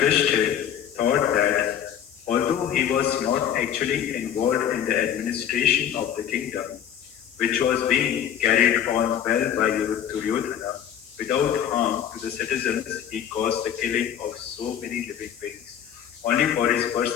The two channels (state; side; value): quieter; right; 9.5 dB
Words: thought that although he was not actually involved in the administration of the kingdom, which was being carried on well by Duryodhana, without harm to the citizens, he caused the killing of so many living beings, only for his